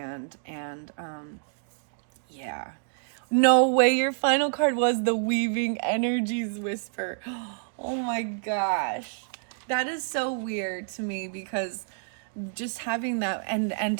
and yeah. No way, your final card was the Weaving Energies Whisper. Oh my gosh. That is so weird to me, because just having that,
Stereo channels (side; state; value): left; silent; digital silence